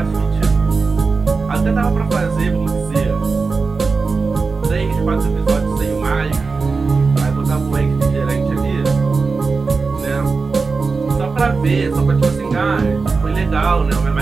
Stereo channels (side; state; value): left; quieter; 4.4 dB